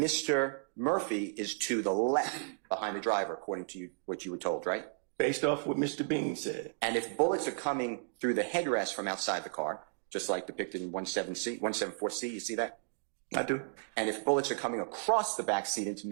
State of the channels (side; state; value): left; silent; digital silence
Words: Mr. Murphy is to the left behind the driver, according to what you were told, right? Based off what Mr. Bean said. And if bullets are coming through the headrest from outside the car, just like depicted in 174C, you see that? I do. And if bullets are coming across the back seat into